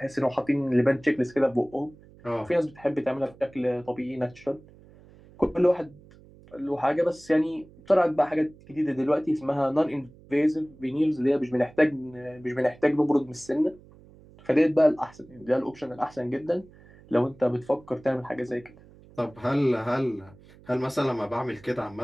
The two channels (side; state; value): right; noise; hum, 24 dB below the sound